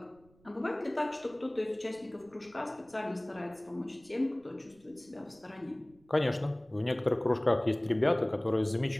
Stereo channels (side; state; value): right; noise; rumble, 30 dB below the sound